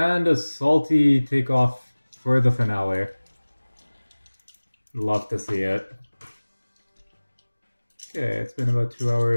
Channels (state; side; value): inverted; both; correlation -1.00